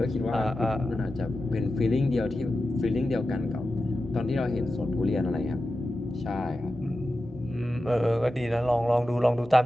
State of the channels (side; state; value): both; normal; correlation 0.92